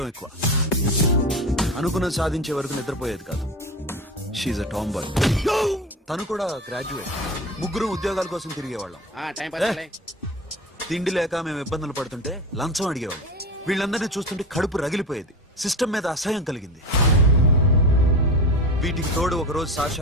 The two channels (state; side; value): normal; both; correlation 0.28